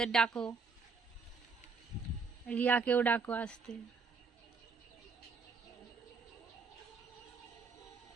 ডাকো, রিয়াকেও ডাকো আসতে।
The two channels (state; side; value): quieter; left; 4.8 dB